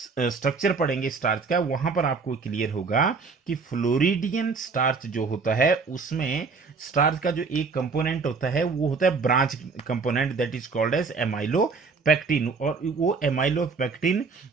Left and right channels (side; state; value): left; quieter; 4.7 dB